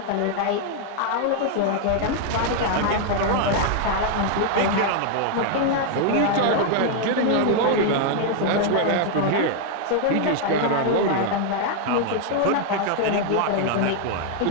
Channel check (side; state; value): both; different; correlation 0.00